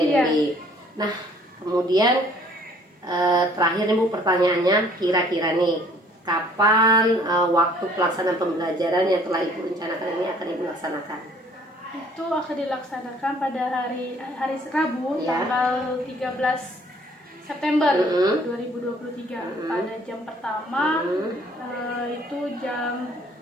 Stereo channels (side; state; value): both; normal; correlation 0.57